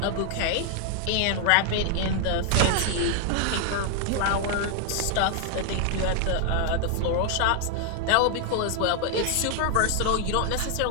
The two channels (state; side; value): different; both; correlation 0.00